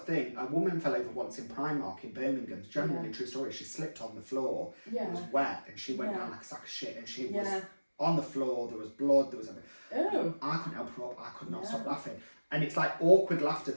of thing. A woman fell over once in Primark in Birmingham. It's generally a true story. She slipped on the floor. Yeah. It was wet, and she went down like a sack of shit, and she was on the floor. There was blood. There was everything. Oh. I couldn't help her up. I could not stop laughing. And it's like awkward laughter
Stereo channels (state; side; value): inverted; both; correlation -1.00